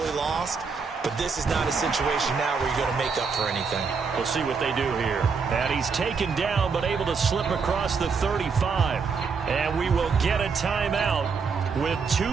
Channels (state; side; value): quieter; left; 5.3 dB